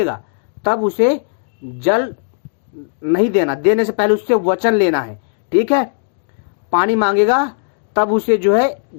तब उसे जल नहीं देना, देने से पहले उससे वचन लेना है। ठीक है, पानी मांगेगा तब उसे जो है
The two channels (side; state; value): right; silent; digital silence